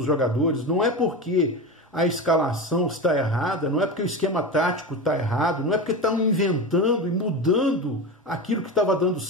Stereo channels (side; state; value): both; normal; correlation 0.23